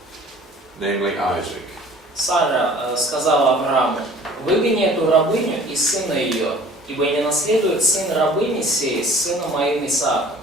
namely Isaac." Сара сказала Аврааму, выгони эту рабыню и сына ее, ибо не наследует сын рабыни сей с сыном моим Исааком.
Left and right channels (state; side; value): normal; both; correlation 0.49